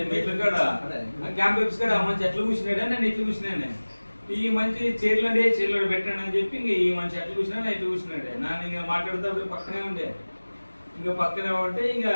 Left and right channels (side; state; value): both; inverted; correlation -1.00